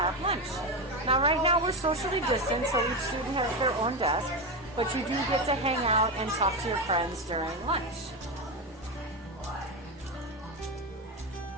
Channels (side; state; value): both; normal; correlation 0.14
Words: lunch. Now right now we're socially distanced, so each student has their own desk, but you do get to hang out and talk to your friends during lunch.